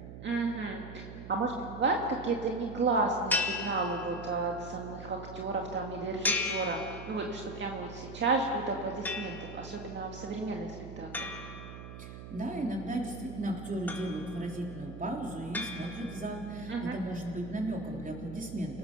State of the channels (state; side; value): noise; right; hum, 11 dB below the sound